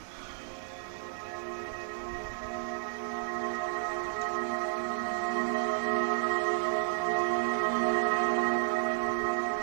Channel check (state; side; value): silent; left; digital silence